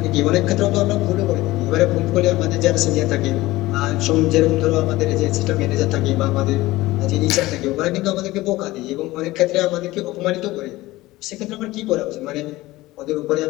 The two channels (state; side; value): quieter; right; 18.5 dB